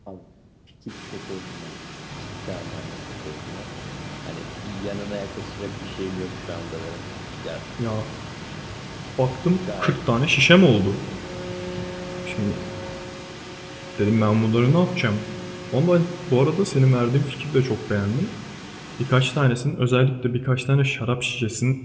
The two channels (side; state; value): both; identical; correlation 1.00